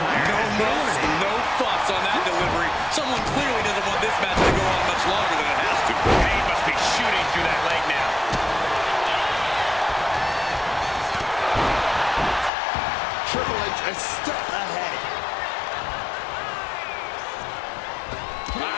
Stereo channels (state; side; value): drops out; right; at 12.5 s